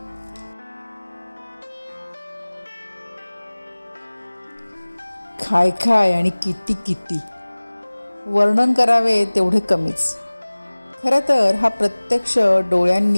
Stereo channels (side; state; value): both; inverted; correlation -1.00